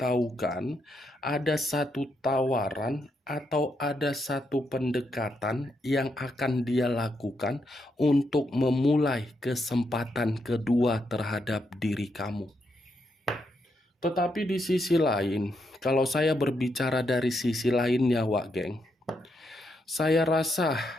ada satu tawaran atau ada satu pendekatan yang akan dia lakukan untuk memulai kesempatan kedua terhadap diri kamu. Tetapi di sisi lain, kalau saya berbicara dari sisi lainnya Wak geng, saya rasa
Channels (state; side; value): normal; both; correlation 0.80